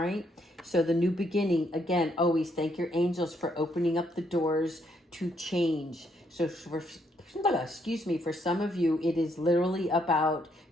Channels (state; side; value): normal; both; correlation 0.73